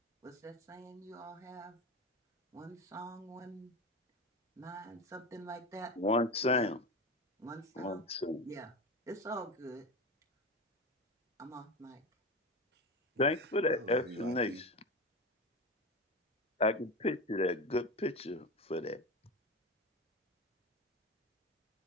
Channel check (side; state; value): both; normal; correlation 0.24